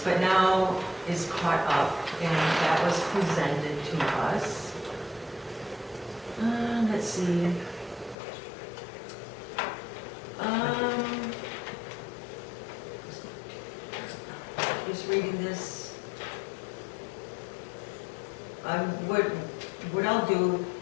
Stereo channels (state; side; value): drops out; right; at 8.2 s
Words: but now is caught up, and that was presented to us. Let's see. Just reading this. What I'll do